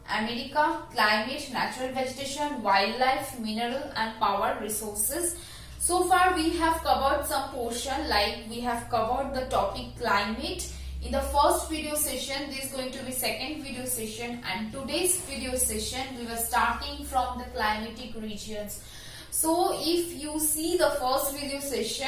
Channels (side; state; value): both; identical; correlation 1.00